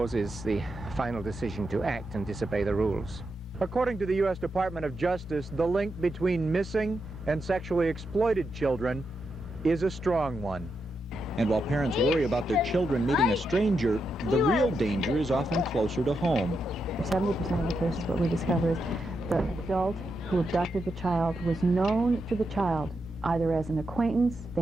the final decision to act and disobey the rules. According to the U.S. Department of Justice, the link between missing and sexually exploited children is a strong one. And while parents worry about their children meeting a stranger, the real danger is often closer to home. 70% of the cases, what we discover is the adult who abducted the child was known to the child, either as an acquaintance,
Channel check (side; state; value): both; normal; correlation 0.84